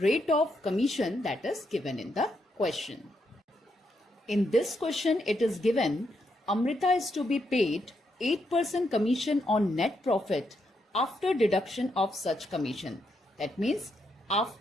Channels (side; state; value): both; normal; correlation 0.80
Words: of commission that is given in the question. In this question, it is given Amrita is to be paid 8% commission on net profit after deduction of such commission. That means